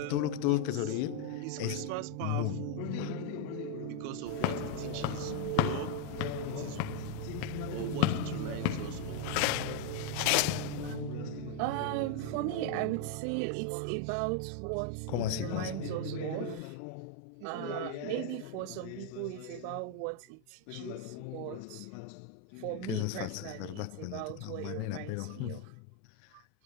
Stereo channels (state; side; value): different; both; correlation 0.01